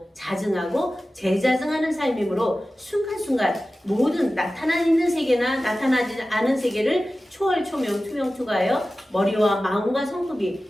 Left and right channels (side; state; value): both; normal; correlation 0.95